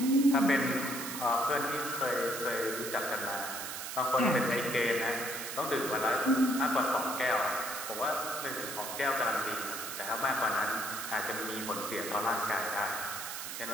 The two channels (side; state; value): right; noise; hiss, 6 dB below the sound